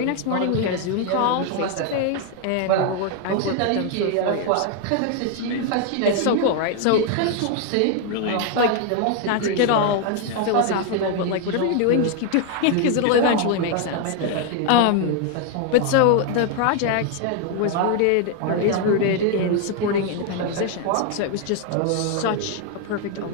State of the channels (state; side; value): different; both; correlation 0.01